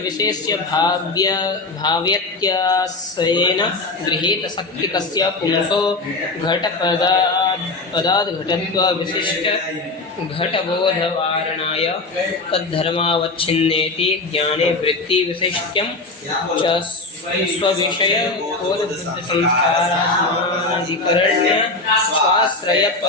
विशेष्य भाव्यत्यासेन गृहीत शक्तिकस्य पुंसो घटपदाद् घटत्व विशिष्ट घटबोधवारणाय तद्धर्मावच्छिन्नेति ज्ञाने वृत्ति विशिष्ट्यं च स्वविषय बोधबुद्धिसंस्काराधिकरण्य स्वाश्रय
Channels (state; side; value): quieter; right; 3.3 dB